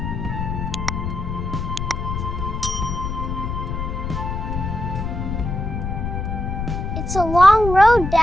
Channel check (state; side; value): noise; left; rumble, 3 dB below the sound